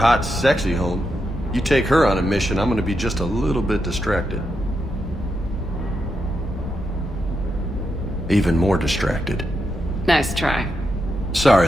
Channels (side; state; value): both; normal; correlation 0.84